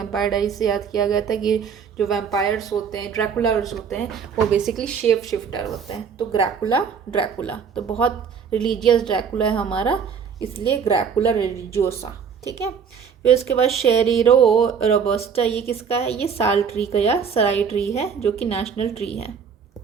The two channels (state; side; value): quieter; left; 6.7 dB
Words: डायरीज से याद किया गया था कि जो वैम्पायर्स होते हैं, ड्रैकुलर्स होते हैं, वो बेसिकली शेप शिफ्टर होते हैं। तो ड्रैकुला तो बहुत रिलीजियस ड्रैकुला है हमारा, इसलिए ग्रैकुला रिलीजियोसा, ठीक है। फिर उसके बाद शेरिरो रोबस्टा, ये किसका है, ये साल ट्री का या सराई ट्री है, जो कि नेशनल ट्री है,